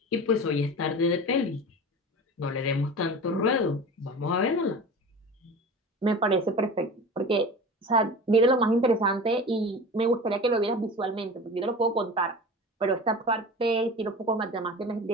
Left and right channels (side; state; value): both; normal; correlation 0.34